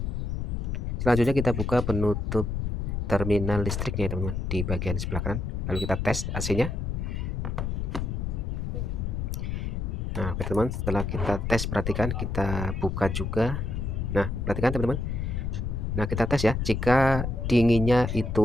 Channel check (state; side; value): noise; left; rumble, 2 dB below the sound